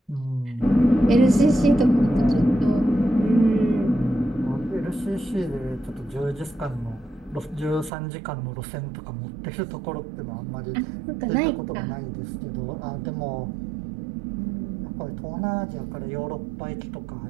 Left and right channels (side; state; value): left; drops out; at 7.9 s